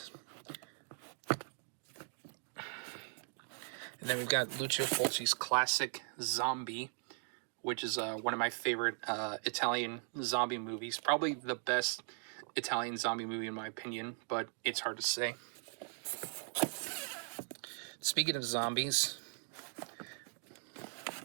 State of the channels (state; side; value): silent; left; 52 dB below the other